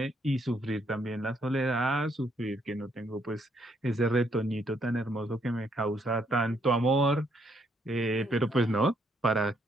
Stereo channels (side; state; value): both; normal; correlation 0.72